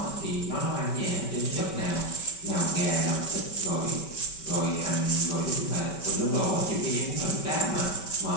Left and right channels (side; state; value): right; late; 5.2 ms